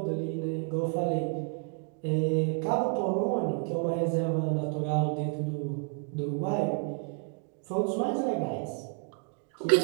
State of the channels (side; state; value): left; quieter; 38.6 dB